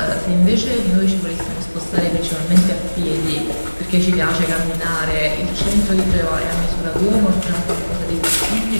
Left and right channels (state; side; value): inverted; both; correlation -1.00